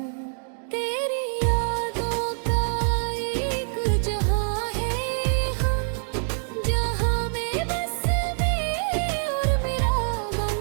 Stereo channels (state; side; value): silent; left; digital silence